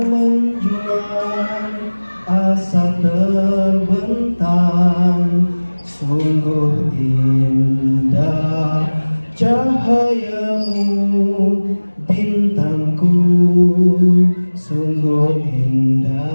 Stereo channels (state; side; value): inverted; both; correlation -1.00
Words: menjulang, asa terbentang. Sungguh indah cahayamu, bintangku. Sungguh